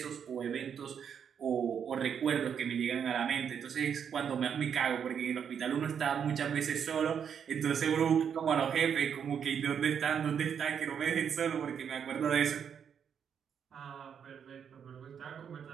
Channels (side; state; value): left; quieter; 7.7 dB